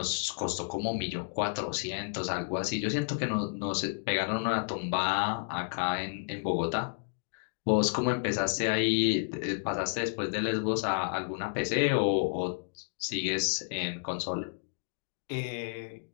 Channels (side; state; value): right; silent; digital silence